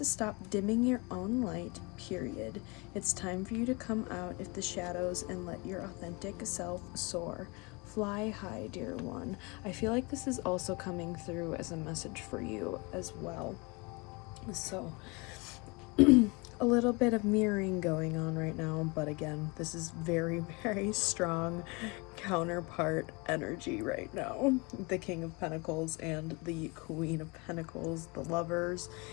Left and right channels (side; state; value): right; quieter; 28.2 dB